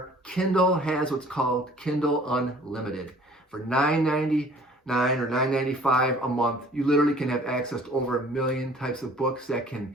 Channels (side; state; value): both; normal; correlation 0.52